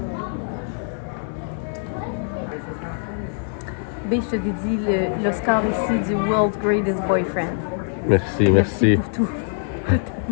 B, je te dédie l'Oscar ici du World's Greatest Boyfriend. Merci, merci. Pour tout.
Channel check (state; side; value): silent; right; 63 dB below the other